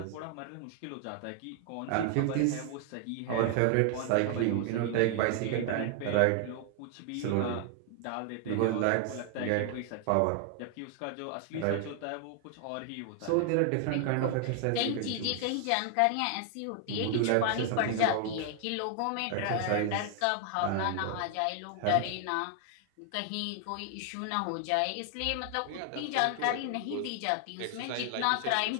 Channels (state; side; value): different; both; correlation 0.00